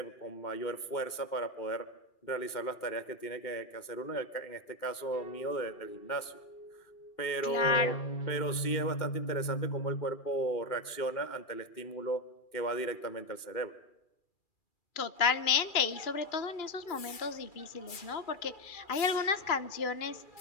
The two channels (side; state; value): right; late; 2.4 ms